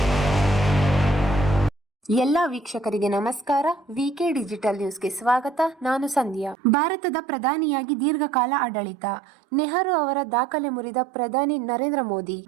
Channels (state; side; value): drops out; left; at 6.6 s